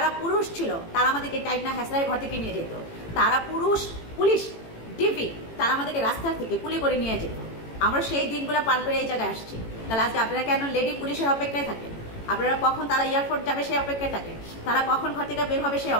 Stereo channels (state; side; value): late; right; 18 ms